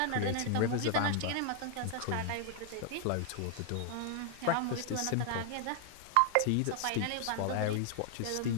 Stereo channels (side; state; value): both; different; correlation 0.00